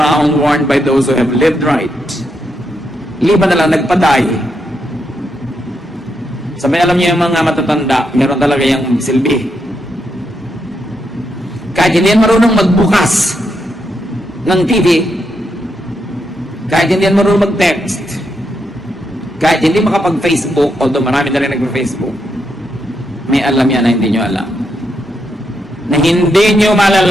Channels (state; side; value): normal; both; correlation 0.81